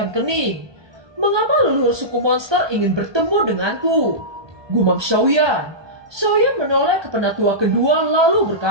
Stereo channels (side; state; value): left; late; 1.2 ms